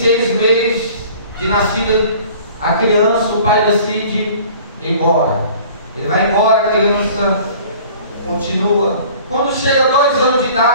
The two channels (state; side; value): inverted; both; correlation -0.48